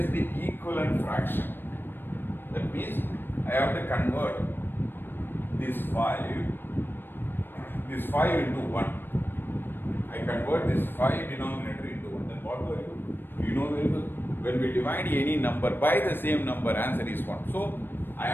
equivalent fraction. That means I have to convert this 5 into 1. I convert this 5 denominator into 1. Then what do I do? You know very well. When we divide any number by the same number, answer is 1. So I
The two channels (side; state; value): right; late; 0.097 ms